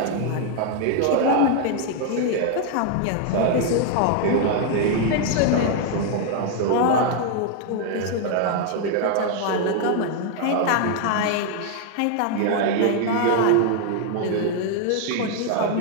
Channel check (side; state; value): both; different; correlation 0.00